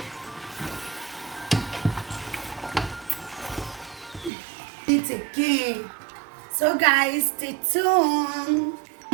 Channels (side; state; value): left; drops out; at 4.3 s